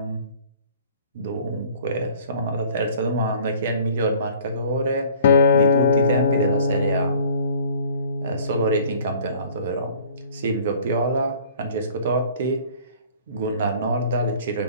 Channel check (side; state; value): both; inverted; correlation -0.52